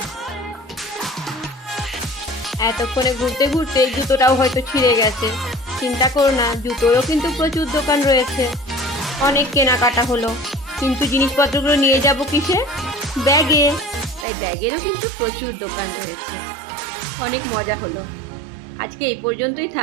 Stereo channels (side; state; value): left; drops out; at 14.2 s